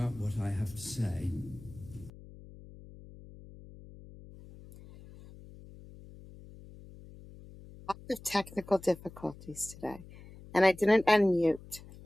what I have to say. Lots of technical difficulties today, and I didn't unmute.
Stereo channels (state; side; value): noise; left; hum, 19 dB below the sound